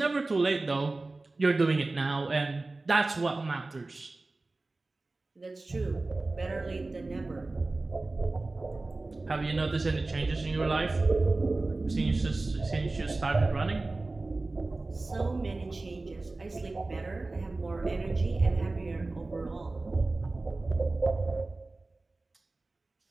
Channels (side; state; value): left; quieter; 3.2 dB